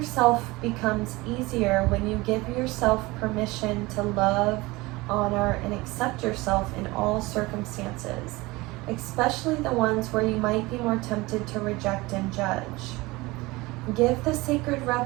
becomes easier when you give yourself permission to love, honor, and accept yourself in all circumstances, especially the ones where you might be more tempted to reject and judge. Give the sacred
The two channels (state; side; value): quieter; left; 21.8 dB